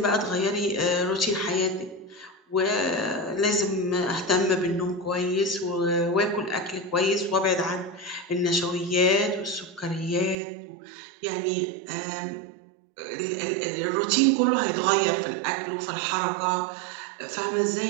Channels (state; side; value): drops out; left; at 10.4 s